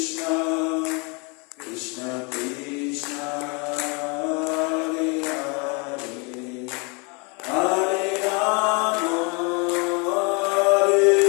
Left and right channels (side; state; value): right; quieter; 31.6 dB